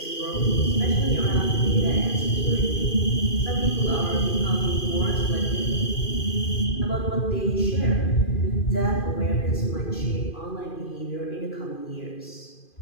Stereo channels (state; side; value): late; right; 2.5 ms